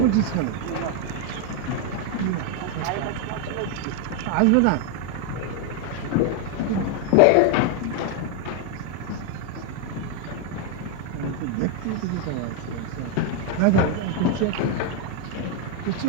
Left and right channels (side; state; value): both; different; correlation 0.01